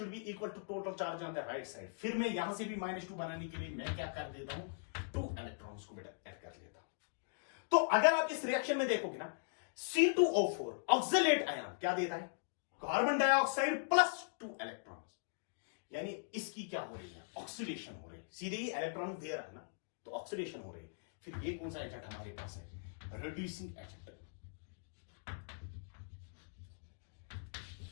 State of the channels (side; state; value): right; silent; digital silence